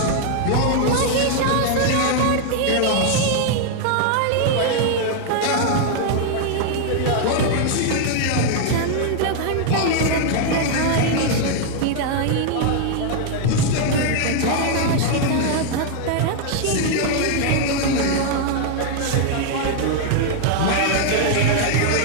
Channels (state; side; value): different; both; correlation 0.00